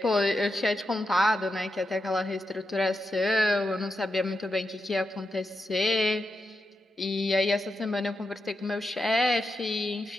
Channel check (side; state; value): both; normal; correlation 0.87